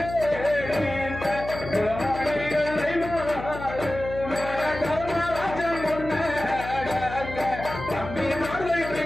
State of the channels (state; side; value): noise; left; hum, 10 dB below the sound